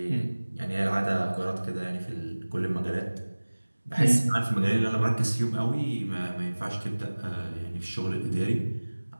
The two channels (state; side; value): inverted; both; correlation -1.00